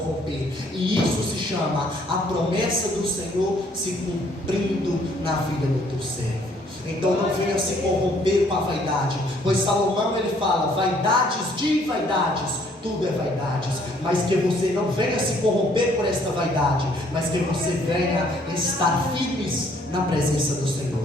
E isso se chama a promessa do Senhor se cumprindo na vida do teu servo. Então não venha se corromper com a vaidade, pois Salomão ele fala: vaidades de vaidades, tudo é vaidades, mas que você não venha se corromper por esta vaidade, mas que você venha estar firmes na presença do Senhor.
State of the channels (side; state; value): both; normal; correlation 0.63